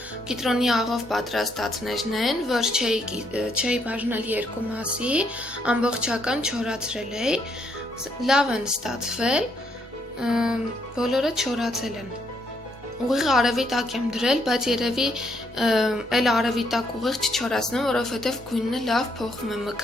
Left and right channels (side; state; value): both; normal; correlation 0.73